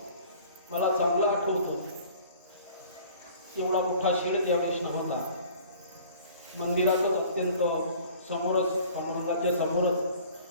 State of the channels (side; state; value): both; inverted; correlation -0.49